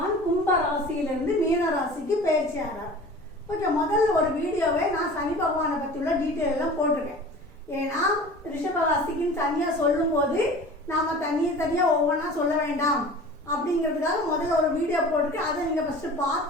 கும்ப ராசியிலிருந்து மீன ராசிக்கு பயிற்சி ஆகிறார். ஓகே, முதல்ல ஒரு வீடியோவை நான் சனி பகவானை பற்றி உள்ள டீட்டெயில் எல்லாம் போட்டிருக்கேன். ஏன்னா ரிஷபராசிக்குன்னு தனியாக சொல்லும்போது நாம் தனியாக ஒவ்வொன்றா சொல்ல வேண்டாம் அப்படிங்கிறதுக்காக முதல்ல ஒரு வீடியோ போட்டுட்டு அதை நீங்கள் ஃபஸ்ட்டு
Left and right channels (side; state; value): both; normal; correlation 0.40